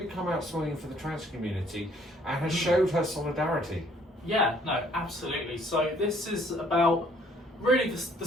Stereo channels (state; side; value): normal; both; correlation 0.62